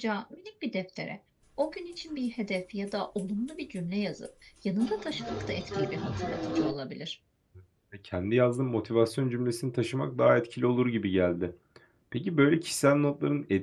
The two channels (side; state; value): both; identical; correlation 1.00